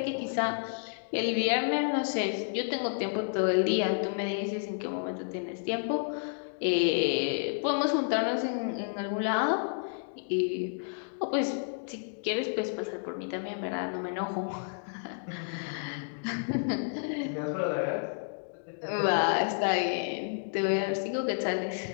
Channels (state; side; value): silent; right; digital silence